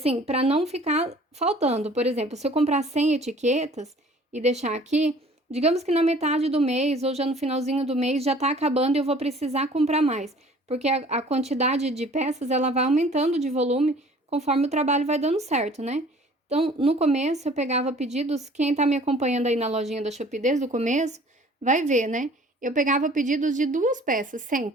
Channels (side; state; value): both; normal; correlation 0.51